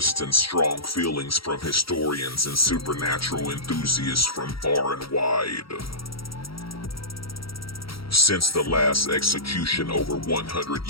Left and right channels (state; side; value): late; right; 0.75 ms